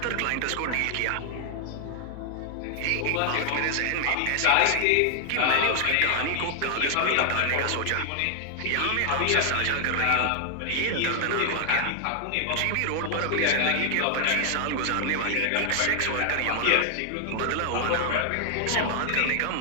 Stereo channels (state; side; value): different; both; correlation 0.00